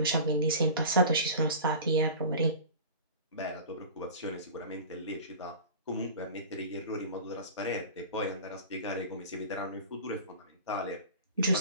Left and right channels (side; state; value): both; inverted; correlation -0.36